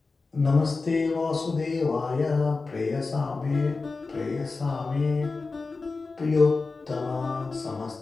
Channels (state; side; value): quieter; right; 4.0 dB